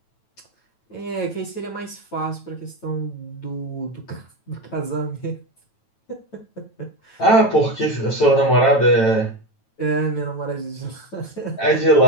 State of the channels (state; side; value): late; right; 9.1 ms